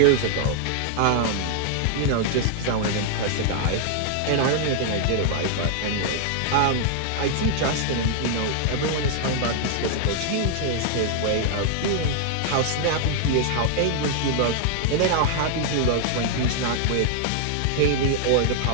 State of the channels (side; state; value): both; different; correlation 0.00